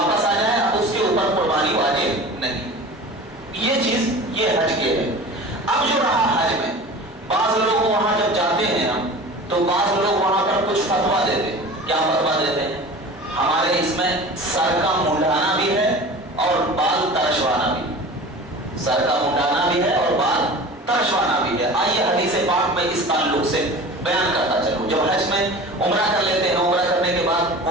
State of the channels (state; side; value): normal; both; correlation 0.37